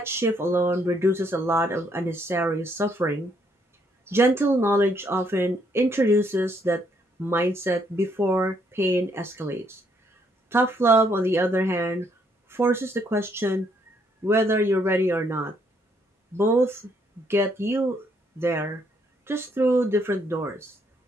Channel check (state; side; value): normal; both; correlation 0.71